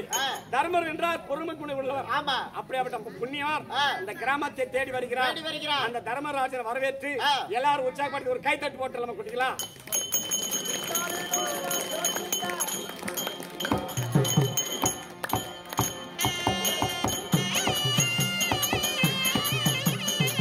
தர்மர் என்றால் பொறுமை குணம் உள்ளவர். அப்படியாப்பட்ட புண்ணியவர் இந்த கிராமத்தை தேடி வருகிறார். அந்த தர்மராஜன் வரவேற்று எல்லாரும் உற்சாகப்படுத்தி ஒரு கைத்தட்டு போட்டு நம்ம குட்டிக்கலாம்.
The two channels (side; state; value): both; identical; correlation 1.00